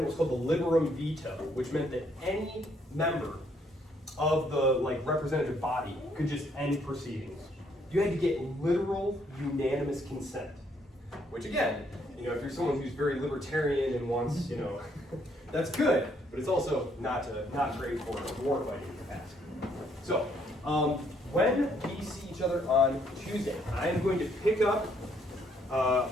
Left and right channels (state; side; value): normal; both; correlation 0.69